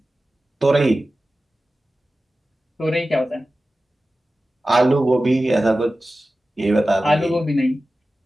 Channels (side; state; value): both; normal; correlation 0.95